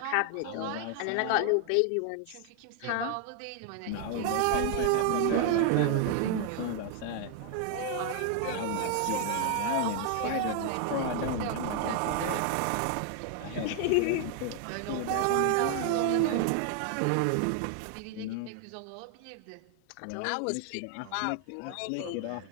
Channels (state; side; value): different; both; correlation 0.00